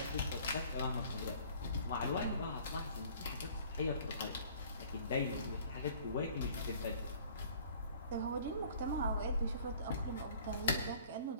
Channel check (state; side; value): inverted; both; correlation -0.52